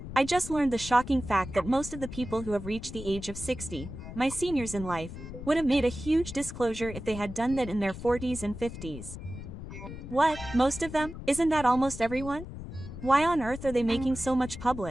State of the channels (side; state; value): left; noise; rumble, 10 dB below the sound